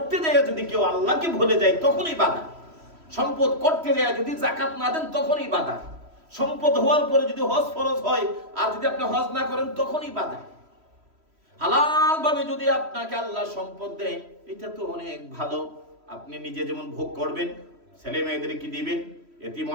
যায় যদি কেউ আল্লাহকে ভুলে যায় তখনই বাধা। সম্পদ করতে যায় যদি যাকাত না দেন তখনই বাধা। সম্পদ হওয়ার পরে যদি হজ ফরজ হয় আর যদি আপনি হজ না করেন তখনই বাধা। হালাল ভাবে যদি আপনাকে আল্লাহ সম্পদ দেয়, এটা তো অনেক ভালো, আপনি নিজে যেমন ভোগ করবেন, ছেলে মেয়েদেরকে দিবেন, এতিম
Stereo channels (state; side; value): late; left; 3.1 ms